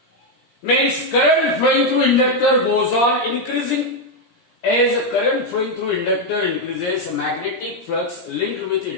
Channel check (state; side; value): late; right; 17 ms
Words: Means current flowing through inductor goes on increasing. As current flowing through inductor increases, magnetic flux linked with